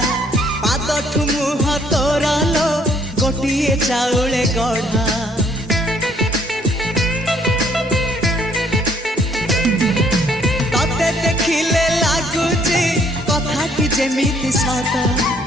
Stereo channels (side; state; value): both; normal; correlation 0.64